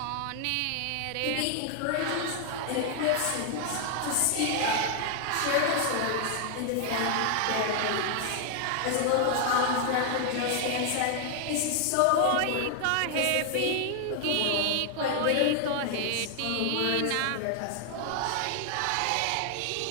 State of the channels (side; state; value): both; different; correlation 0.00